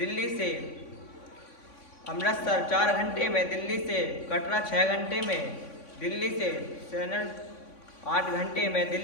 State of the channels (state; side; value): late; right; 3.5 ms